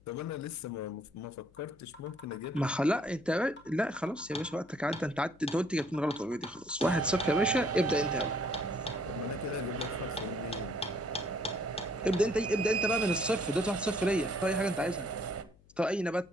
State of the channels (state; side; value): noise; left; hum, 28 dB below the sound